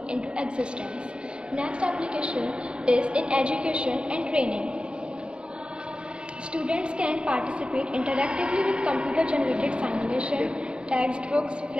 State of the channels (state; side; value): late; left; 0.054 ms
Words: into existence. Next application is in education and training. Students can participate interactively with computer-generated simulation, textbooks,